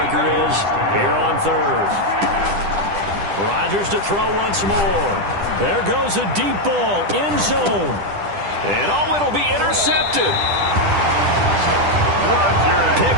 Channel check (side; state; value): left; late; 10 ms